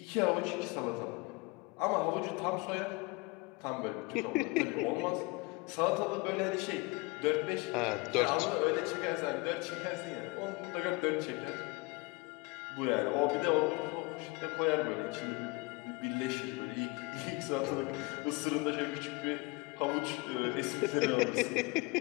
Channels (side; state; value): right; quieter; 25.3 dB